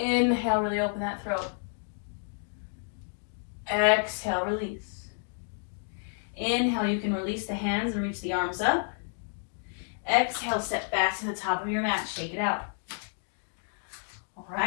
really open that throat. Exhale, release. Inhale, you can release the hands and reach the arms up. Exhale, step back to the top of your mat, shake it out. All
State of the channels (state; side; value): silent; right; digital silence